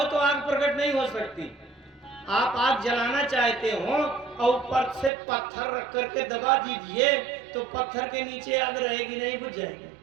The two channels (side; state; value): left; drops out; at 5.1 s